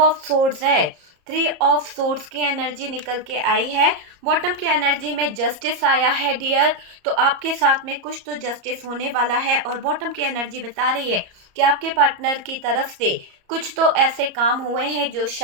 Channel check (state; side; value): late; left; 34 ms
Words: सोर्ड्स है, 3 ऑफ सोर्ड्स की एनर्जी निकल के आई है। बॉटम की एनर्जी में जस्टिस आया है डियर, तो आपके साथ में कुछ तो जस्टिस होने वाला है। और बॉटम की एनर्जी बता रही है कि आपके पार्टनर की तरफ से कुछ तो ऐसे काम हुए हैं जो